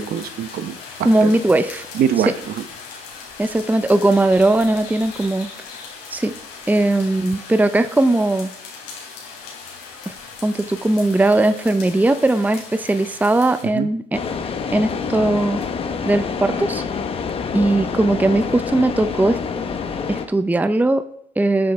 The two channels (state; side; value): normal; both; correlation 0.87